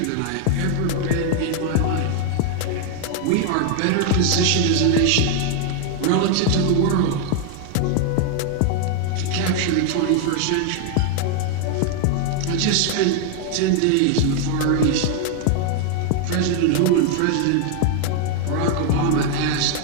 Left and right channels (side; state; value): both; different; correlation 0.00